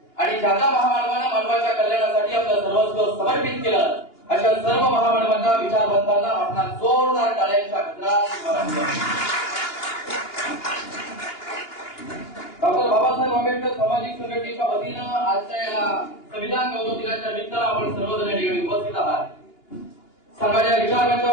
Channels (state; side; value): late; right; 2.8 ms